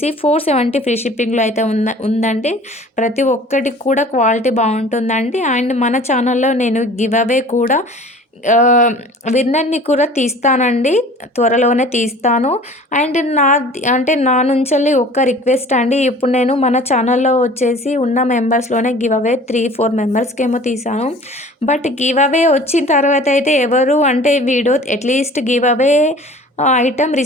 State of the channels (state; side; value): normal; both; correlation 0.46